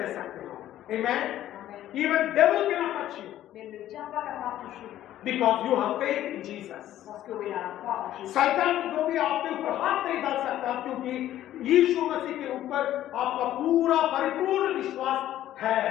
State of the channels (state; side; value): quieter; right; 12.8 dB